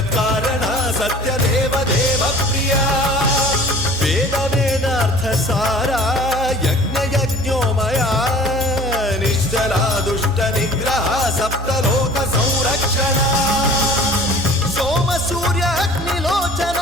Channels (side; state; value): both; normal; correlation 0.46